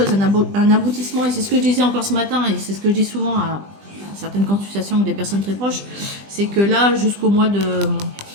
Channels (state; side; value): late; left; 20 ms